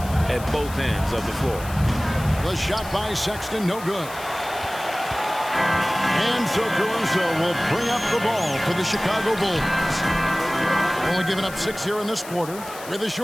at both ends of the floor. The shot by Sexton, no good. And so Caruso will bring up the ball for the Chicago Bulls. Only giving up 6 here in this quarter. With a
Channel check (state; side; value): noise; left; hiss, 15 dB below the sound